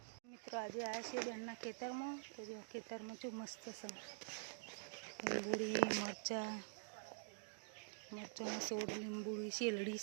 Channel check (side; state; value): left; silent; digital silence